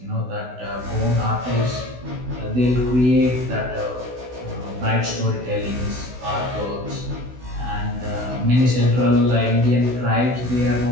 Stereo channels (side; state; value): left; late; 16 ms